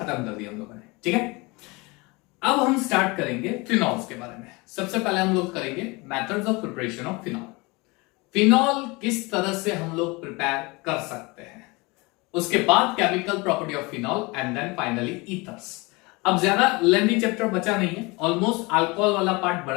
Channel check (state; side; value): quieter; right; 25.5 dB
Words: कर दी हम लोगों ने, ठीक है। अब हम स्टार्ट करेंगे फिनॉल्स के बारे में। सबसे पहले हम लोग करेंगे methods of preparation of phenol. Phenol किस तरह से हम लोग प्रिपेयर कर सकते हैं, उसके बाद chemical property of phenol and then finally ethers. अब ज्यादा लेंथी चैप्टर बचा नहीं है, ऑलमोस्ट अल्कोहल वाला पार्ट